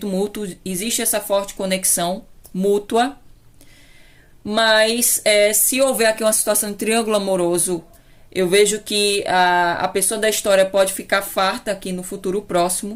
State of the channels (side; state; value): both; identical; correlation 1.00